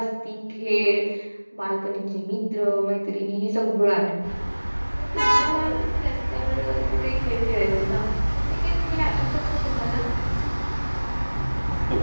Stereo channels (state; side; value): inverted; both; correlation -1.00